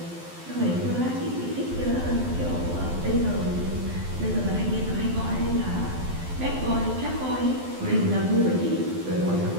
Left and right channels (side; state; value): left; late; 12 ms